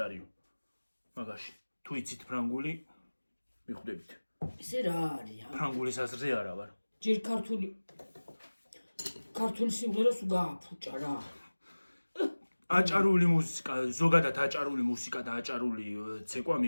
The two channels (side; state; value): both; inverted; correlation -1.00